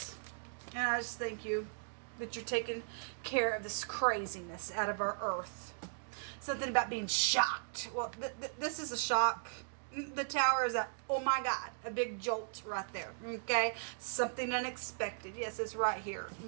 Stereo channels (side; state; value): left; silent; digital silence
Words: And I just thank you that you're taking care of this craziness out of our earth. Something about being shocked. Well, this is a shock. The Tower is a, oh my God, a big jolt right there, okay? Something unexpected. Yes, it's right here,